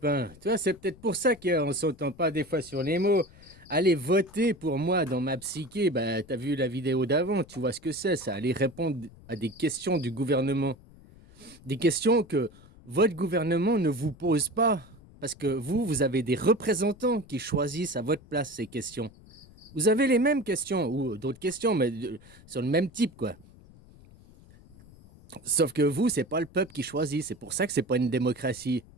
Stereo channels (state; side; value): noise; left; rumble, 23 dB below the sound